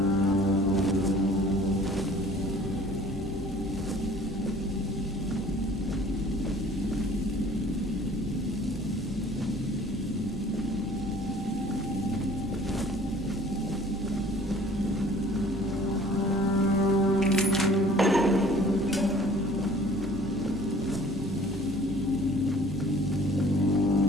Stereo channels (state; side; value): normal; both; correlation 0.51